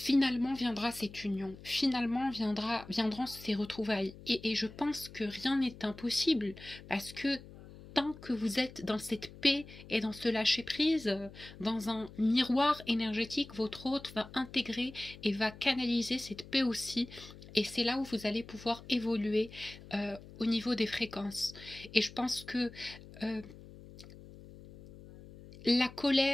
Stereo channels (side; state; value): left; noise; hum, 17 dB below the sound